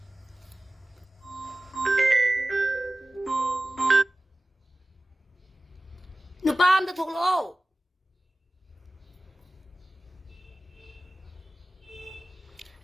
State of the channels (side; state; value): both; normal; correlation 0.96